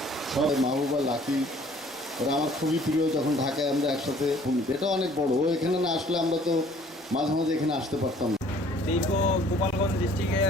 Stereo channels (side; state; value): both; normal; correlation 0.55